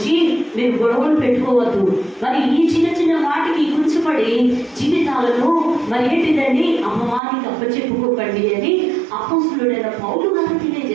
మీరు గొడవలు పెట్టుకోవద్దు, మరి ఈ చిన్న చిన్న వాటికి కూర్చుపడి జీవితాలను మరి ఏంటిదండి అమ్మవారికి అప్పచెప్పుకోకండి అని అపోస్తులుడైన పౌలు గారు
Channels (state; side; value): drops out; left; at 7.2 s